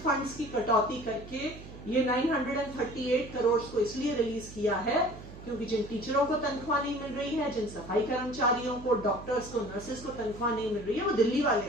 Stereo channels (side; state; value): right; noise; hum, 15 dB below the sound